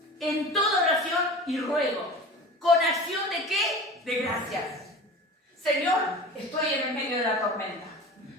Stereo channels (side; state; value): both; normal; correlation 0.36